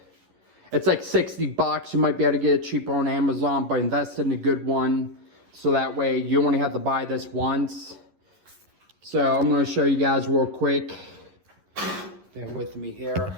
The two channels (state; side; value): late; left; 11 ms